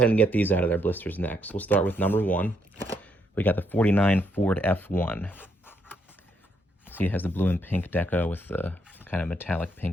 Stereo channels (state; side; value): normal; both; correlation 0.75